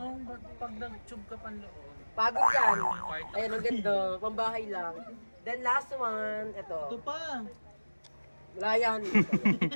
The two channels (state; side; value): inverted; both; correlation -1.00